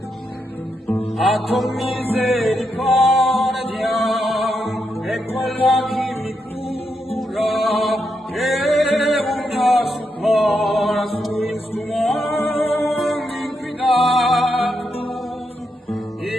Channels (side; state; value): both; normal; correlation 0.83